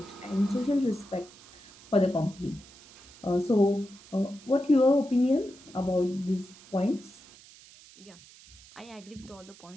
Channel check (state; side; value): noise; right; hiss, 22 dB below the sound